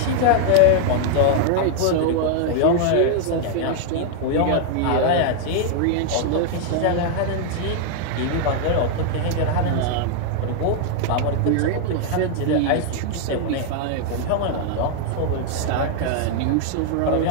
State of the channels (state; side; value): different; both; correlation 0.00